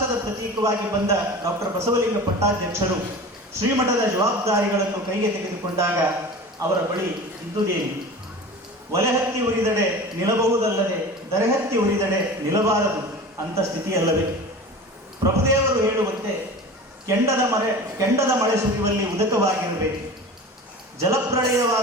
ಪ್ರತೀಕವಾಗಿ ಬಂದ ಡಾಕ್ಟರ್ ಬಸವಲಿಂಗ ಪಟ್ಟಾಧ್ಯಕ್ಷರು ಶ್ರೀಮಠದ ಜವಾಬ್ದಾರಿಗಳನ್ನು ಕೈಗೆ ತೆಗೆದುಕೊಂಡಾಗ ಅವರ ಬಳಿ ಇದ್ದುದೇನು? ಒಲೆಹತ್ತಿ ಉರಿದಡೆ ನಿಲ್ಲಬಹುದಲ್ಲದೆ ದರೆಹತ್ತಿ ಉರಿದಡೆ ನಿಲ್ಲಬಾರದು ಅಂತ ಸ್ಥಿತಿಯಲ್ಲವೇ? ಪ್ರಭುದೇವರು ಹೇಳುವಂತೆ ಕೆಂಡದ ಮಳೆ ಸುರಿಯುವಲ್ಲಿ ಉದಕವಾಗಿರಬೇಕು,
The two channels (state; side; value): normal; both; correlation 0.35